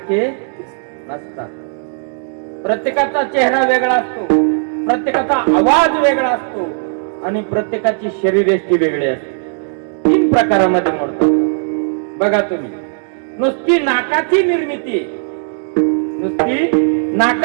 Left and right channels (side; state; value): left; silent; 69 dB below the other